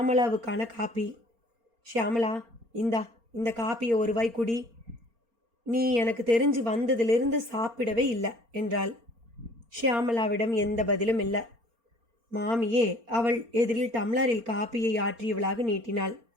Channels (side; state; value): left; late; 4.3 ms